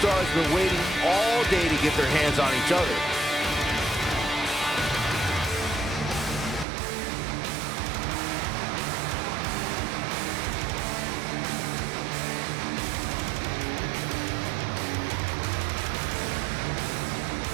have been waiting all day to get their hands on each other.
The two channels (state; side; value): drops out; left; at 6.7 s